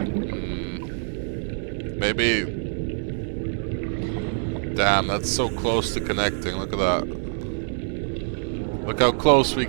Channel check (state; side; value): silent; left; 62 dB below the other